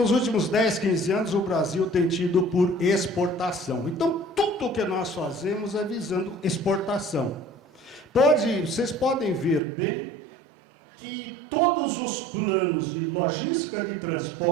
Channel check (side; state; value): left; drops out; at 9.6 s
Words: últimos 10, 15 anos o Brasil tem tido por exportação. Então, tudo o que nós fazemos é visando exportação. Vocês podem ver bem que todos os planos de logística de